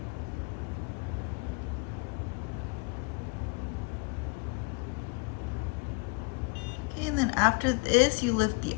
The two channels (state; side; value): quieter; right; 28.7 dB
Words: Okay, and then after this, you lift the